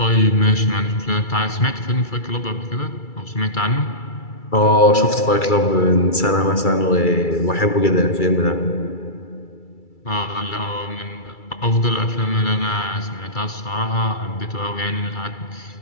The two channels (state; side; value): late; right; 2.3 ms